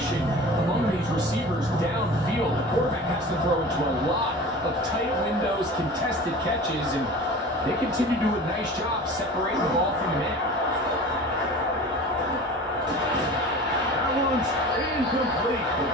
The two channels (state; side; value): normal; both; correlation 0.37